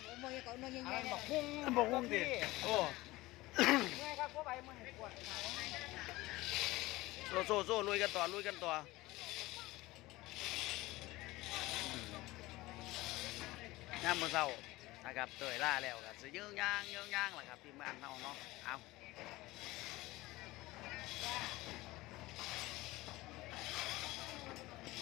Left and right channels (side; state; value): right; quieter; 19.5 dB